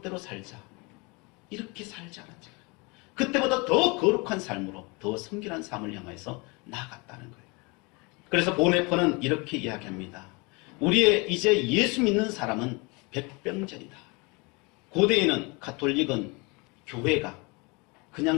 살자, 이렇게 살지 않았잖아요. 그때보다 더 거룩한 삶으로 더 성결한 삶을 향해서 나아갔다는 거예요. 그래서 보네퍼는 이렇게 이야기합니다. 우리의 이제 예수 믿는 사람은 백병전이다. 고대에는 가톨릭은 교회가 그냥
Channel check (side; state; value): right; quieter; 28.2 dB